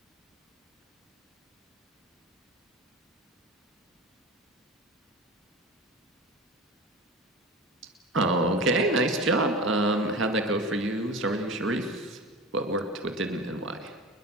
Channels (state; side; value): normal; both; correlation 0.32